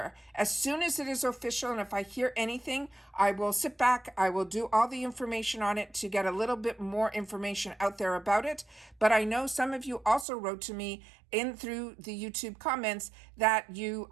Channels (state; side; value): drops out; left; at 10.2 s